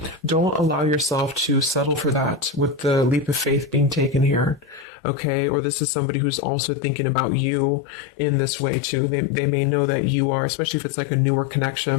don't allow yourself to settle for that with the leap of faith being taken here. Okay. Or this is somebody who's also thinking about you in this way too. They may know that you are, especially if it's like a newer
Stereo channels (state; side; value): drops out; right; at 4.9 s